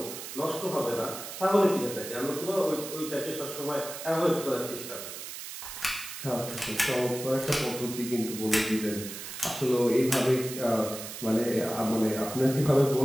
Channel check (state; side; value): noise; right; hiss, 9 dB below the sound